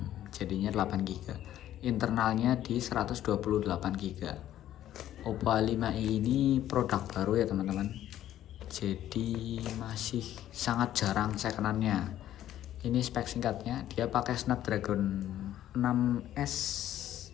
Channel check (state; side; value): quieter; right; 12.3 dB